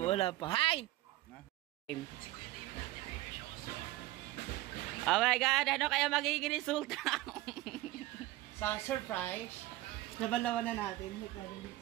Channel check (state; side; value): quieter; left; 17.6 dB